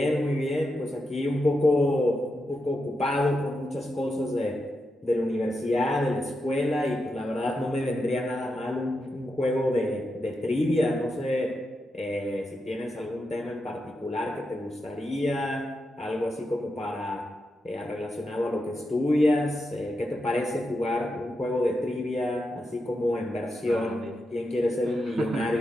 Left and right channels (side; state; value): both; normal; correlation 0.86